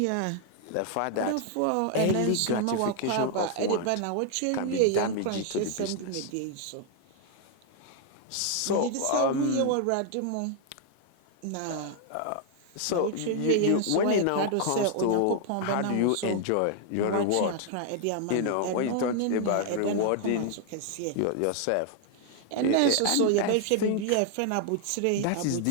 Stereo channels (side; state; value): both; different; correlation 0.00